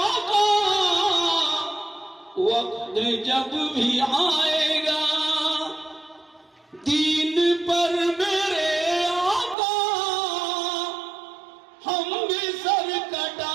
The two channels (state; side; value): drops out; left; at 9.6 s